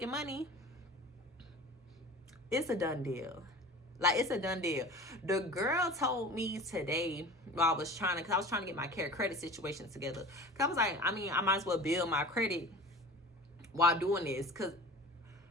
money, it's a done deal. Like, it's a done deal. The girl told me today while I was trying to get my credit situation together. Cause I was like, I mean, I might as well build my credit while doing this, cause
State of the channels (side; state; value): both; normal; correlation 0.39